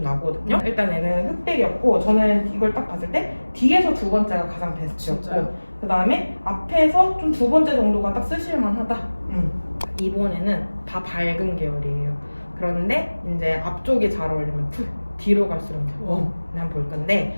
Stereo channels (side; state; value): both; inverted; correlation -1.00